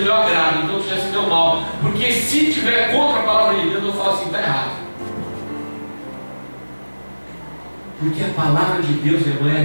meu agrado, então já se deu mal. Porque se tiver contra a palavra de Deus, eu falo assim, está errado. Porque a palavra de Deus, irmão, é a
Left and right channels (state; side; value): inverted; both; correlation -1.00